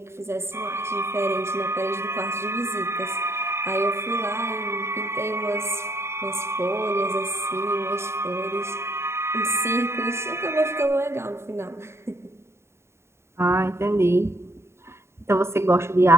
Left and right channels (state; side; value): late; left; 0.13 ms